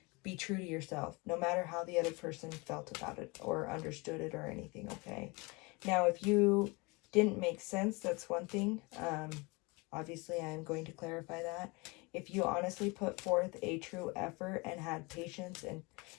be true to yourself, no matter how the other person felt about it or understood it or anything, okay? Now, if you didn't make sense, that's one thing. Obviously, I'm going to clarify that. If you honestly put forth a true effort and had patience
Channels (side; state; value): right; quieter; 27.1 dB